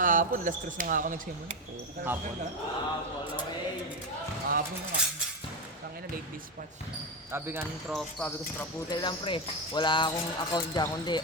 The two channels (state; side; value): normal; both; correlation 0.13